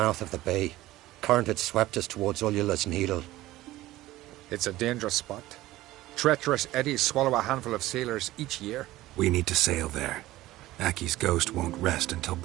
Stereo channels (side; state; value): left; quieter; 16.6 dB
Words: of the bay. Current had swept us towards Ullula's Needle. It's a dangerous spot. Treacherous eddies swallow a handful of sailors each year. We need to sail there. Aki's ghost won't rest until